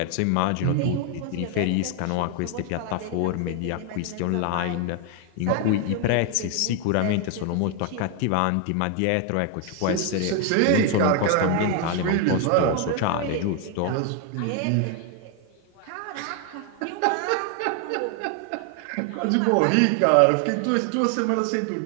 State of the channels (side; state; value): both; different; correlation 0.01